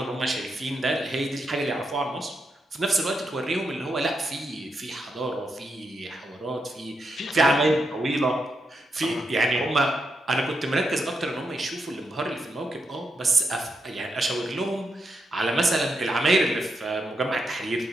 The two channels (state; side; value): normal; both; correlation 0.83